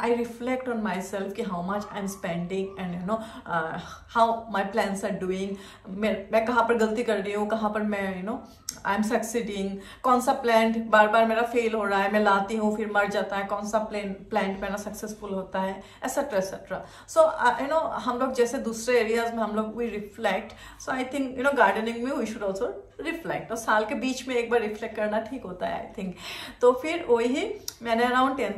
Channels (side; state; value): both; identical; correlation 1.00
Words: reflect on my self कि how much I am spending and you know how my plans are doing, मैं कहाँ पर गलती कर रही हूँ, कहाँ पर मैं you know I am succeeding, कौन सा प्लांट बार बार मेरा फेल हो रहा है, मैं लाती हूँ फिर मर जाता है, कौन सा प्लांट मेरा सक्सेसफुल होता है, etcetera etcetera. So you know हम लोग जैसे दूसरे एरियाज में हम लोग we reflect, so I think you know gardening में वी शुड ऑल्सो रिफ्लेक्ट, तो साल के बीच में एक बार रिफ्लेक्ट करना ठीक होता है आई थिंक। तो फिर वही मैंने अराउंड